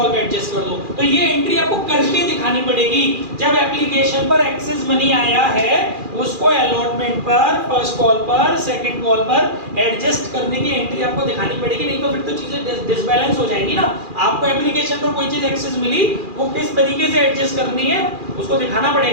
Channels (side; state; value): left; late; 2.4 ms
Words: पे एडजस्ट कर दो। तो ये एंट्री आपको करके दिखानी पड़ेगी। जब एप्लीकेशन पर एक्सेस मनी आया है उसको अलॉटमेंट पर, फर्स्ट कॉल पर, सेकंड कॉल पर एडजस्ट करने की एंट्री आपको दिखानी पड़ेगी, नहीं तो फिर तो चीजें डिसबैलेंस हो जाएंगी ना। आपको एप्लीकेशन पर कोई चीज एक्सेस मिली वो किस तरीके से एडजस्ट करनी है उसको दिखाना